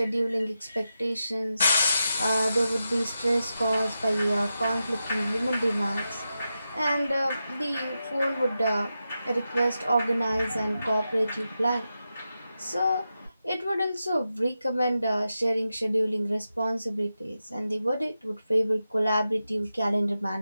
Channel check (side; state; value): both; inverted; correlation -0.90